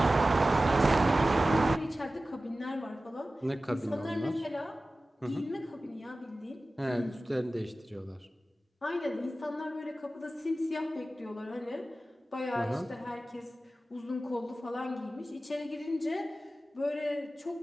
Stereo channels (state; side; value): normal; both; correlation 0.96